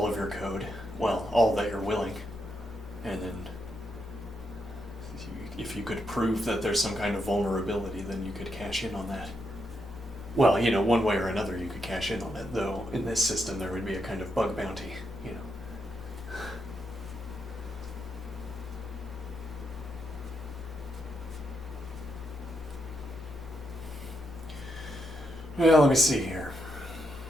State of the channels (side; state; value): both; normal; correlation 0.81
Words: of your code, well, all that you're willing, and then if you could prove that there's some kind of vulnerability, then you could cash in on that. Well, you know, one way or another you could cash in on it, though in this system there would be a kind of bug bounty, you know. Well, let me see here.